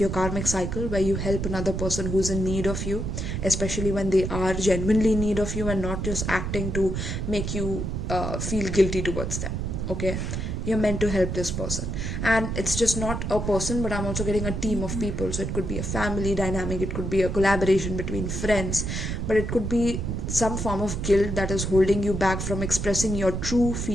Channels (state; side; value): noise; right; rumble, 3 dB below the sound